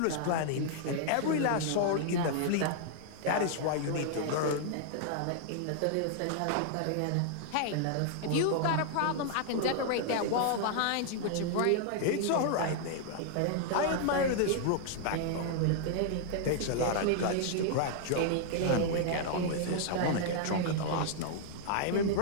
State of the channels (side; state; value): both; different; correlation -0.01